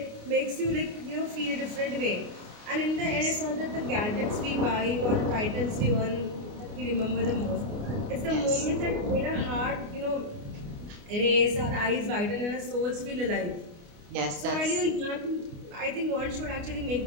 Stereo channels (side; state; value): left; late; 29 ms